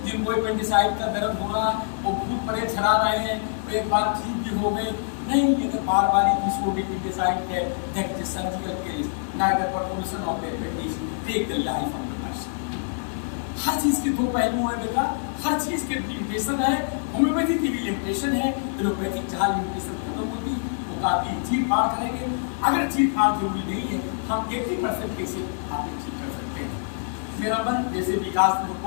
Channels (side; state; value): right; silent; digital silence